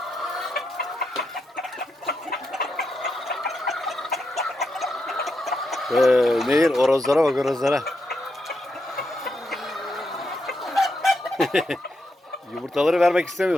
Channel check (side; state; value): both; normal; correlation 0.83